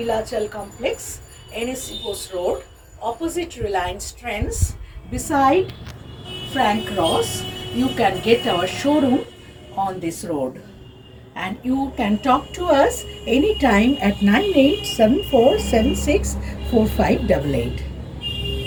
Complex, NSC Post Road, opposite Reliance Trends, beside Frank Ross. You can get our showroom on this road, and you can talk to us anytime at 9874764588.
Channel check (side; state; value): both; identical; correlation 1.00